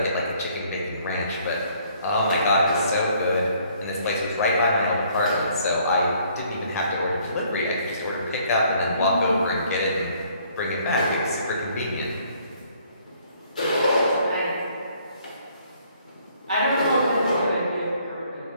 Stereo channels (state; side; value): inverted; both; correlation -0.63